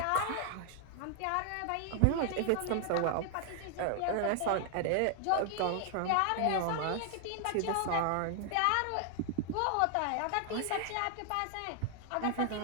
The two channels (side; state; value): both; different; correlation 0.00